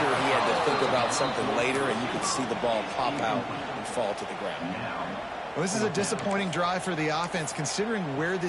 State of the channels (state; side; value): identical; both; correlation 1.00